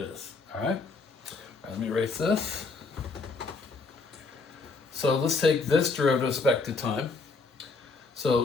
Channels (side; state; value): right; quieter; 4.0 dB